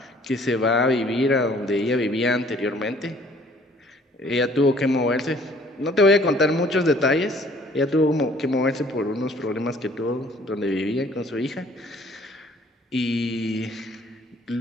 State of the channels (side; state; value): both; normal; correlation 0.57